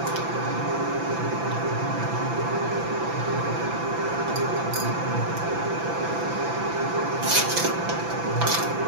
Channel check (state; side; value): late; left; 6.0 ms